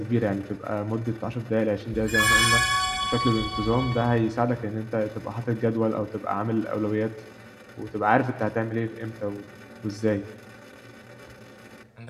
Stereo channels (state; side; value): identical; both; correlation 1.00